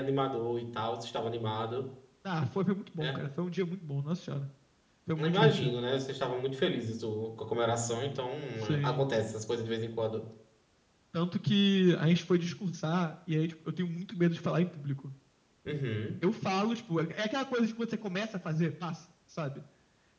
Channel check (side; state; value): both; identical; correlation 1.00